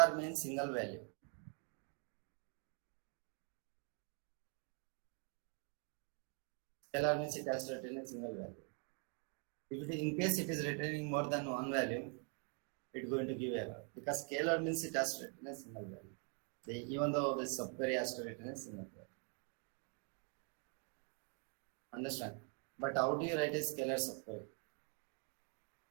means single value. Scalar means it has to return a single value. If it, in case it is returning more than one value, it's going to give error because scalar means it has to return a single value. Even though the subquery has to return a single value. Understand? But how do you write a scalar subquery?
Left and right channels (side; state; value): left; quieter; 38.8 dB